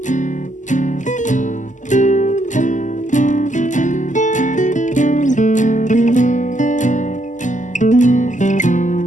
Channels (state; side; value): late; right; 0.36 ms